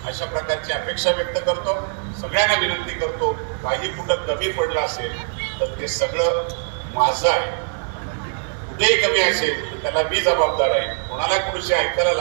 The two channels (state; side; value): silent; left; 64 dB below the other